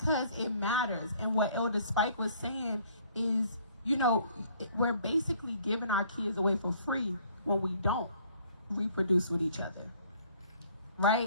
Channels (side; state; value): both; inverted; correlation -0.59